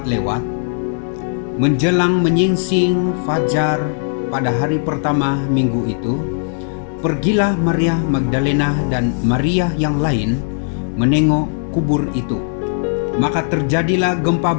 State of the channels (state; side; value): silent; right; digital silence